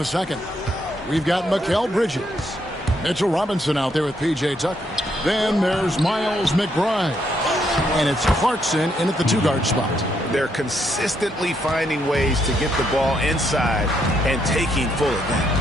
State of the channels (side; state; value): both; normal; correlation 0.75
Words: second. We've got Mikal Bridges. Mitchell Robinson out there with P.J. Tucker. Then there's Miles McBride. And it's Clarkson in at the 2-guard spot. They're consistently finding ways to get the ball inside and taking full